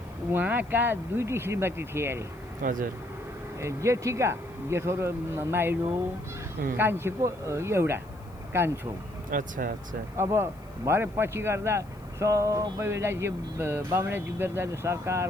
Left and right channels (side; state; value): left; noise; hiss, 29 dB below the sound